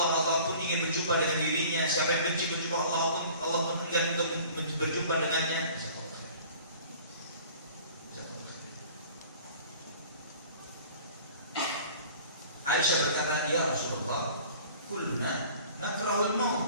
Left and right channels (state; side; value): inverted; both; correlation -0.47